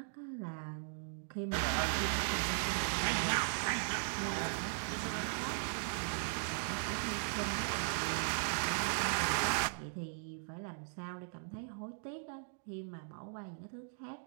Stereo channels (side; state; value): left; silent; digital silence